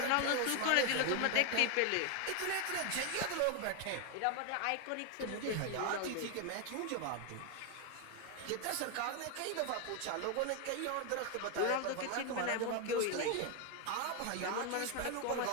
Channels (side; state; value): both; different; correlation 0.01